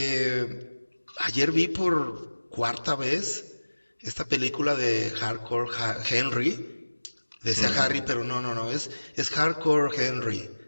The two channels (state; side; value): inverted; both; correlation -1.00